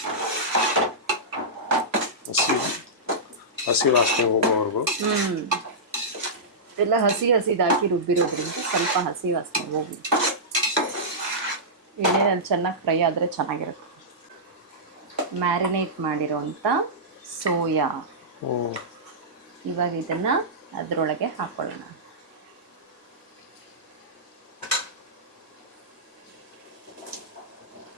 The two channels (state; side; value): normal; both; correlation -0.15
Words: ಹಸಿ ವಾಸನೆ ಹೋಗೋವರೆಗೂ. ಎಲ್ಲ ಹಸಿದಾಕಿ ರುಬ್ಬಿರೋದ್ರಿಂದ ಸ್ವಲ್ಪ ಹಸಿ ವಾಸನೆ ಹೋಗಿ ಎಣ್ಣೆನಲ್ಲಿ ಚೆನ್ನಾಗಿ ಫ್ರೈ ಆದರೆ ಚೆನ್ನಾಗಿರುತ್ತೆ. ಮ್ಯಾರಿನೇಟ್ ಮಾಡಿರೋಂಥ ಸೋಯಾ, ಇವಾಗ ಇದನ್ನು ಅದರೊಳಗೆ ಹಾಕ್ಕೊಳ್ಳೋಣ.